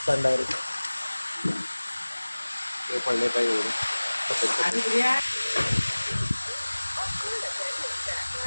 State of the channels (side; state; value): both; inverted; correlation -1.00